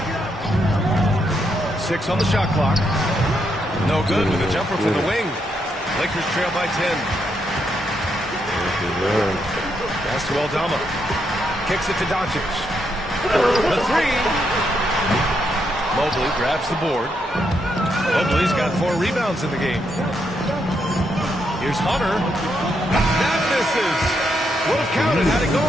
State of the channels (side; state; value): both; normal; correlation 0.79